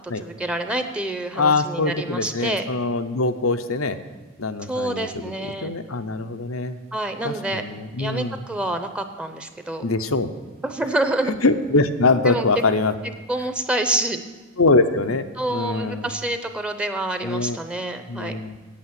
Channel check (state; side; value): normal; both; correlation 0.04